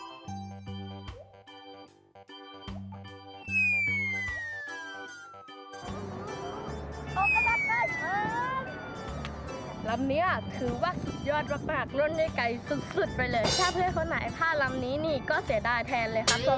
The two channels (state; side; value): identical; both; correlation 1.00